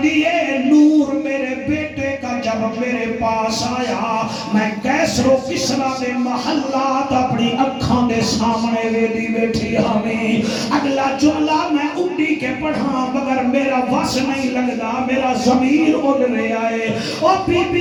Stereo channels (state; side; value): identical; both; correlation 1.00